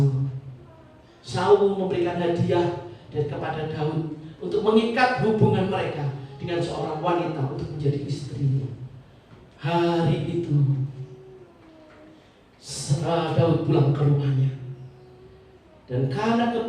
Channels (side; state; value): both; identical; correlation 1.00